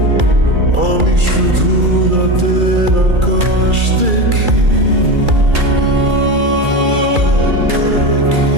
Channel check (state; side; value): late; left; 2.4 ms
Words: আমি শুধু রাতের আকাশ দেখি,